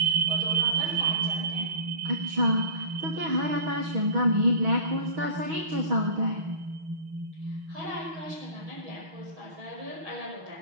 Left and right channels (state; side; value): late; left; 6.3 ms